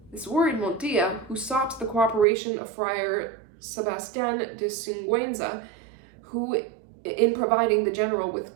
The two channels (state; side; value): drops out; left; at 2.2 s